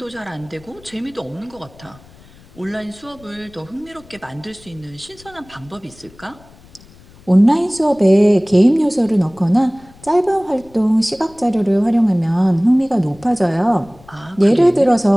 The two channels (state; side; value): noise; left; rumble, 25 dB below the sound